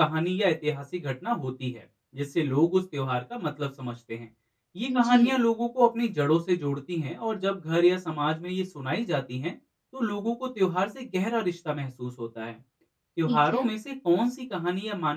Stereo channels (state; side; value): identical; both; correlation 1.00